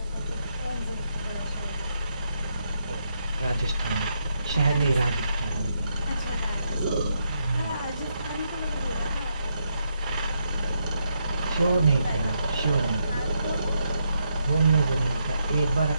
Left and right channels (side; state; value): both; inverted; correlation -0.78